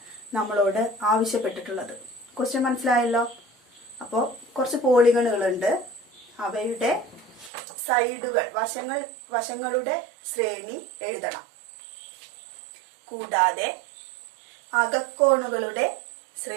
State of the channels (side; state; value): left; drops out; at 7.5 s